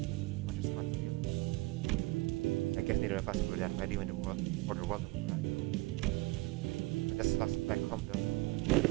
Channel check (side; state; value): left; quieter; 22.0 dB